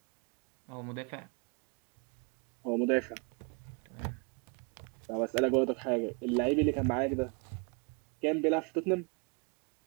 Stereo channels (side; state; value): left; quieter; 33.2 dB